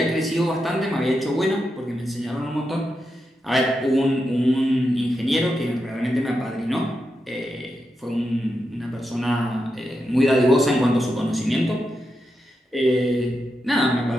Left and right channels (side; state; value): both; normal; correlation 0.86